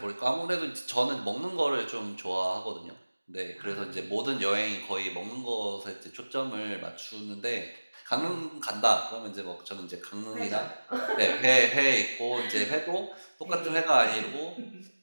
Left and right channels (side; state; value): both; inverted; correlation -1.00